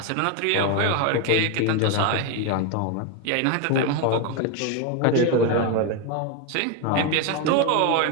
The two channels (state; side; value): different; both; correlation 0.02